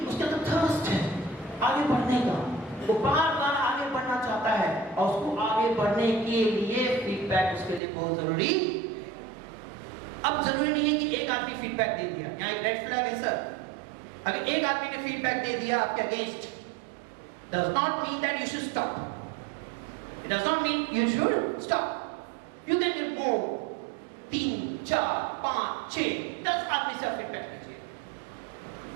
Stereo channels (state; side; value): drops out; left; at 7.8 s